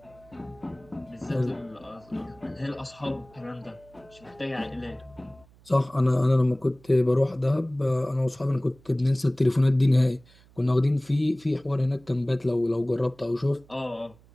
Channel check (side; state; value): right; noise; hum, 27 dB below the sound